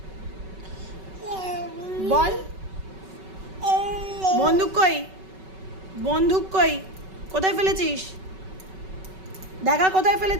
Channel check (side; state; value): left; late; 5.3 ms